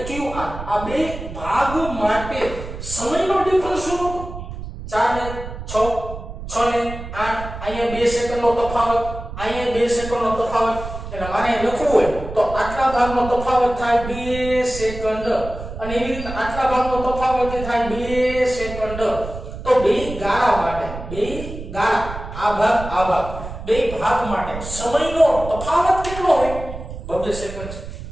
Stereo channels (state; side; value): noise; right; rumble, 10 dB below the sound